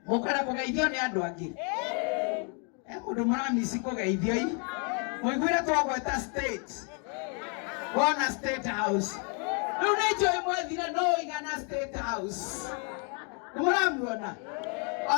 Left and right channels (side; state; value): right; quieter; 38.2 dB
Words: mukara kugeithio ni andu angi mundu muramisi kugeithio i muiguire twagweta state wona state house riu ni njoi mwethire no igana state house nimuramuona